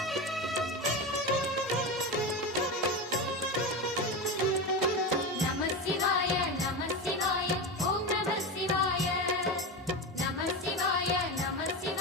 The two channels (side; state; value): both; normal; correlation 0.20